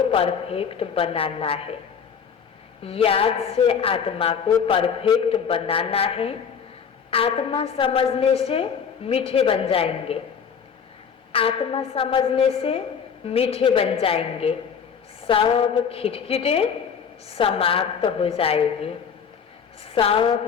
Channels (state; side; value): quieter; right; 6.9 dB